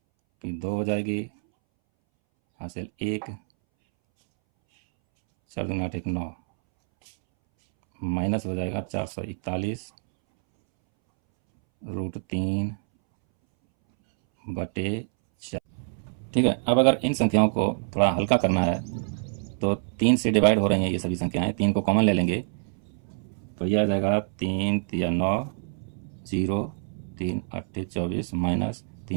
फिर 2 हो जाएगी, हासिल 1, 4 दूनी 8 1 9, माइनस हो जाएगा 441√3/4। ठीक है। अब अगर इन संख्याओं को थोड़ा हल्का करना है तो 3 से डिवाइड हो रही हैं ये सभी संख्याएं, 3 को कॉमन ले लेंगे तो यह आ जाएगा 3 तिया 9 0 3 8 24 माइनस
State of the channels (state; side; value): silent; left; 61 dB below the other